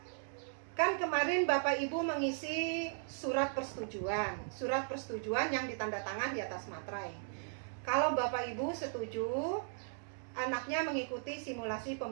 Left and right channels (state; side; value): silent; left; digital silence